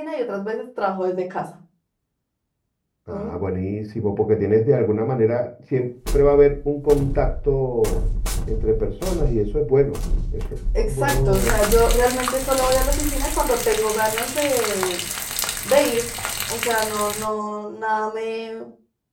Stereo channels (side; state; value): both; identical; correlation 1.00